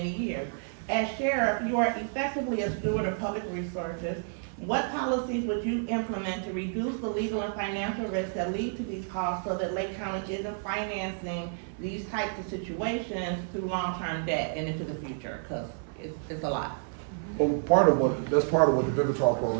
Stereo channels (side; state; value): left; silent; digital silence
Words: years. As sheriff, you are effectively a steward of public resources. What policies would you implement to reduce the legal and financial risks that lead to these costs so that Lake County isn't financing these types of situations through long-term debt and into the future? Because it's a lot. Well, that's part of what the Vivitrol